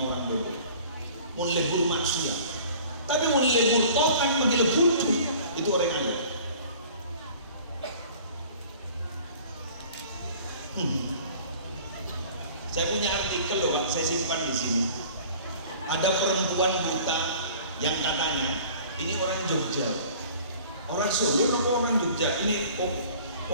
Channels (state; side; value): inverted; both; correlation -0.47